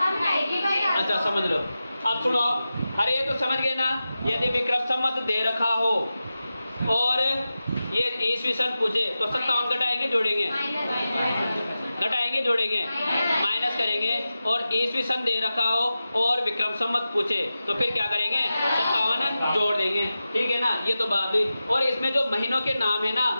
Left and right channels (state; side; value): inverted; both; correlation -0.93